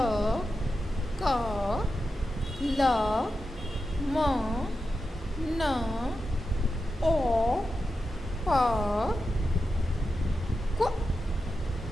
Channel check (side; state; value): both; normal; correlation 0.90